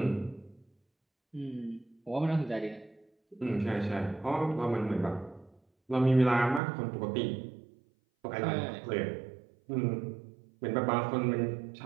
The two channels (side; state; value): left; drops out; at 6.6 s